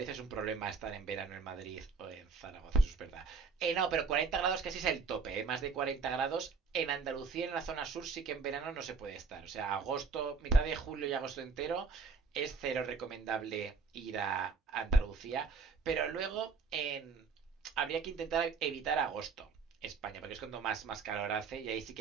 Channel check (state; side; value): quieter; left; 4.8 dB